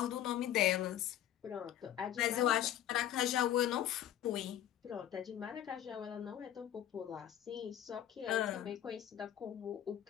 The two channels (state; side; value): quieter; right; 11.5 dB